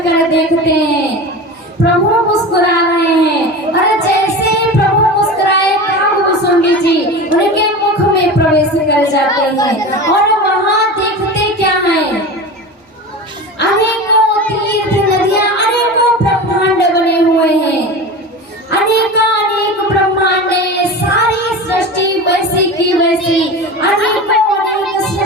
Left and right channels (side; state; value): both; normal; correlation 0.30